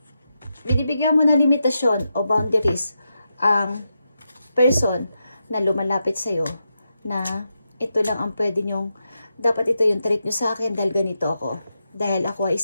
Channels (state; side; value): inverted; both; correlation -0.87